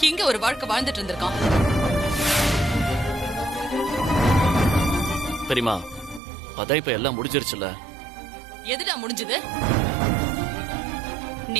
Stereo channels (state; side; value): drops out; left; at 6.2 s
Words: இங்க ஒரு வாழ்க்கை வாழ்ந்துட்டு இருந்திருக்கான். பெரியமா, அதான் இப்ப எல்லாம் முடிஞ்சிருச்சுல. எதுடா முடிஞ்சது?